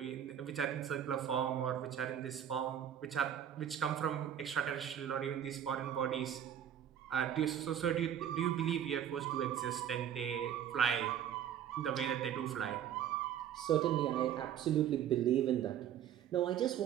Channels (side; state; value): left; quieter; 9.8 dB